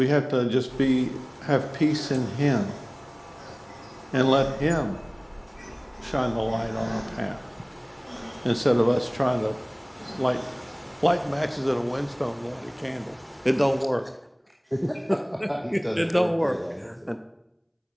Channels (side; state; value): both; identical; correlation 1.00